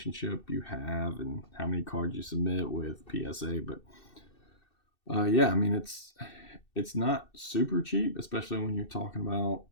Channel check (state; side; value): late; right; 2.6 ms